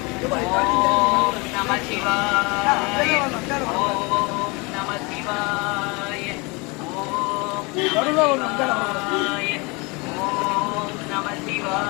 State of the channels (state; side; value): quieter; right; 27.6 dB